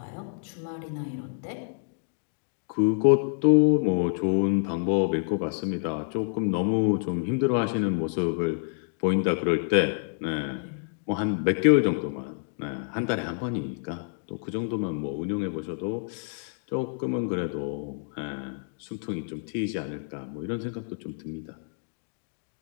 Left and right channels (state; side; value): silent; right; digital silence